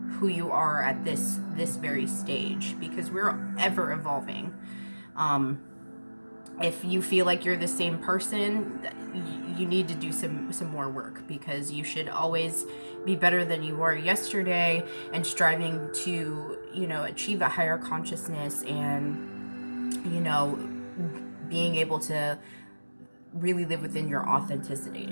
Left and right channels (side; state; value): both; inverted; correlation -1.00